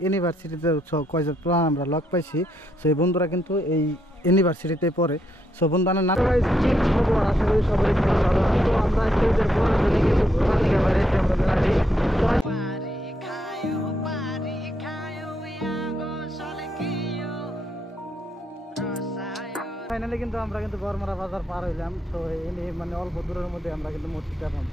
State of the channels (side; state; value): both; normal; correlation 0.76